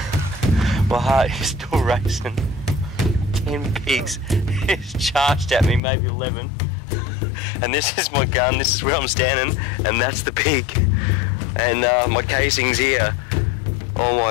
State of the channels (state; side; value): drops out; right; at 5.8 s